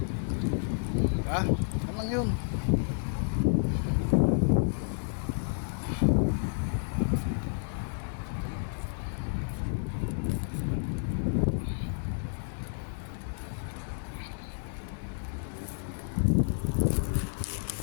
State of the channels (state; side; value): silent; right; digital silence